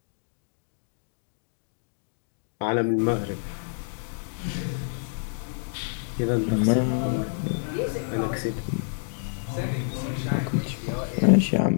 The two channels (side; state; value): right; silent; digital silence